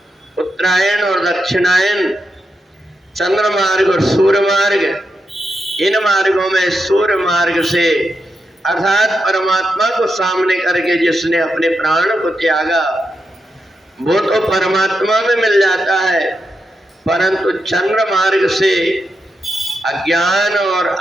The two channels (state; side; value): normal; both; correlation 0.86